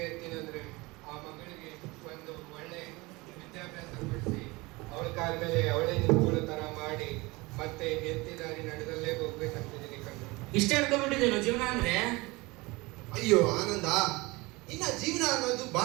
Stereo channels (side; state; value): left; quieter; 23.5 dB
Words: ಇರ್ತೀನಂದ್ರೆ ಆ ಮಗಳಿಗೆ ಒಂದು ಒಳ್ಳೆ ವಿದ್ಯಾಭ್ಯಾಸ ಕೊಡಿಸಿ ಅವಳ ಕಾಲ ಮೇಲೆ ಅವಳೇ ನಿಂತ್ಕೊಳ್ಳೋ ತರ ಮಾಡಿ ಮತ್ತೆ ಎತ್ತಿದಾರಿ ನಡೆದಲ್ಲೇ ಹೋಗ್ಬೇಕಂತಿದ್ದೀನಿ ಕಣ್ಣು. ಇಷ್ಟೇ ಅನ್ಕೊಂಡ್ಬಿಟ್ಟಿದ್ದೇನು ಜೀವನ ಅಂದ್ರೆ? ಅಯ್ಯೋ ಆನಂದ, ಇನ್ನ ಜೀವನ ಅನ್ನೋದು